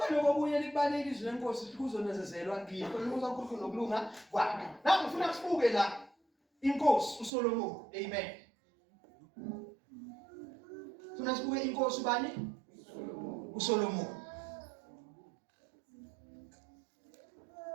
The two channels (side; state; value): left; drops out; at 7.3 s